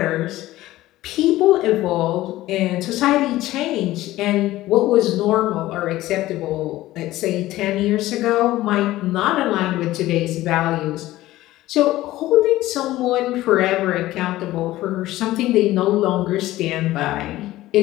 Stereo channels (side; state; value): right; quieter; 16.2 dB